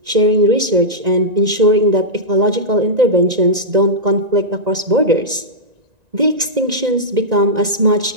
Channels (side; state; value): left; late; 1.9 ms